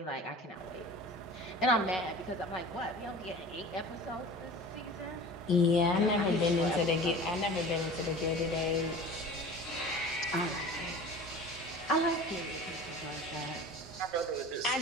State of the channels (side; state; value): both; normal; correlation 0.39